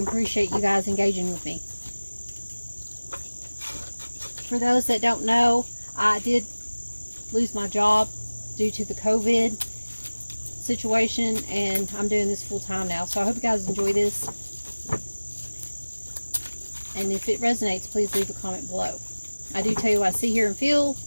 appreciate you guys engaging with me. For those that don't know, I did lose my job due to the COVID situation, and I'm doing this full time now. So I hope you guys enjoy this. And if it resonates, please leave a comment below. I do tell you what I see, hear, and feel.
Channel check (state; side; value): inverted; both; correlation -1.00